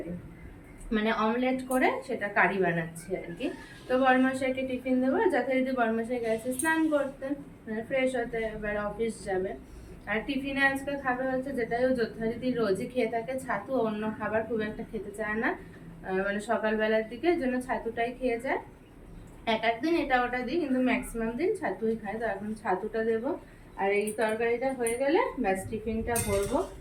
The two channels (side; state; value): both; identical; correlation 1.00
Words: মানে অমলেট করে সেটা কারি বানাচ্ছি আর কি। তো বড়মশাইকে টিফিন দেবো, যথারীতি বড়মশাই গেছে স্নান করতে, মানে ফ্রেশ হতে, এবার অফিস যাবে। আর টিফিনে আজকে খাবে হচ্ছে, যেটাই ও যথারীতি রোজই খেয়ে থাকে, ছাতু। অন্য খাবার খুব একটা খেতে চায় না, মানে সকালবেলার দিকে জন্য ছাতুটাই খেয়ে যায়। এক একদিন এটা ওটা দিই, কিন্তু ম্যাক্সিমাম দিন ছাতুই খায়। তো এখন ছাতুটা দেবো, আর এই তরকারিটা হয়ে গেলে ব্যাস টিফিনটা ভরবো।